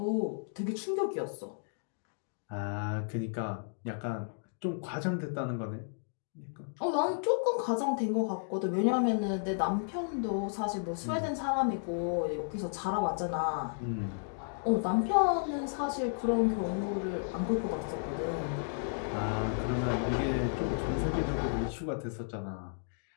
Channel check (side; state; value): right; silent; digital silence